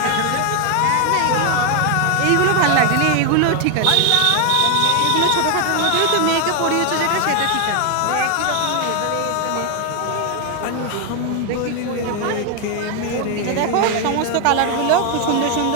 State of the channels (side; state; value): both; different; correlation 0.00